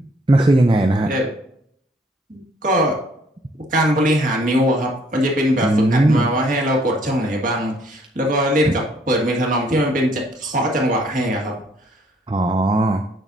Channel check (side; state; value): both; normal; correlation 0.64